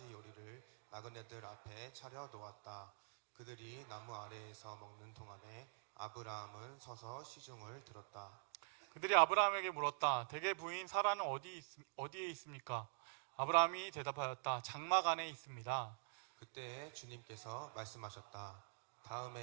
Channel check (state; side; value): silent; left; digital silence